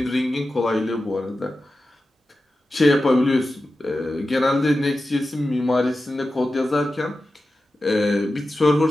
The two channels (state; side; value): normal; both; correlation 0.93